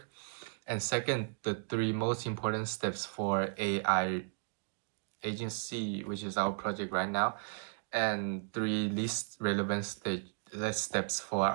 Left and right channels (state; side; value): silent; left; digital silence